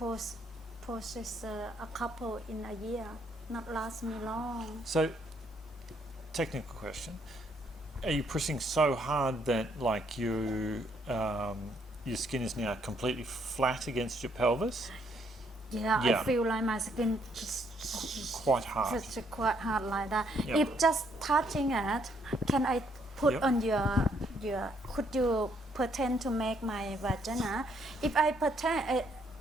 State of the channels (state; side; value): normal; both; correlation 0.70